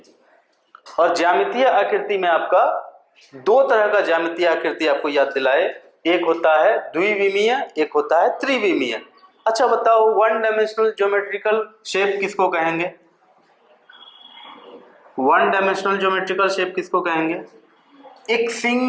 और ज्यामितीय आकृति में आपका 2 तरह का ज्यामितीय आकृति आपको याद दिलाए, एक होता है द्विविमीय, एक होता है त्रिविमीय। अच्छा बताओ, 1 डायमेंशनल ज्योमेट्रिकल शेप किसको कहेंगे? 1 डायमेंशनल ज्योमेट्रिकल शेप किसको कहेंगे? एक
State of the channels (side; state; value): both; identical; correlation 1.00